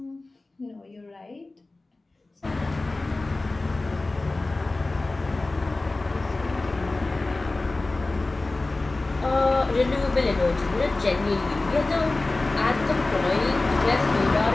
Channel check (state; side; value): quieter; right; 3.1 dB